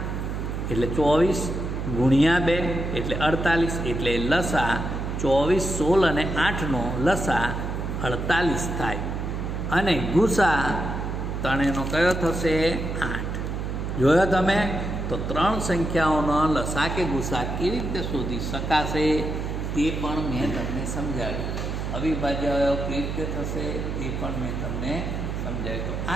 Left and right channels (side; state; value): right; noise; hum, 3 dB below the sound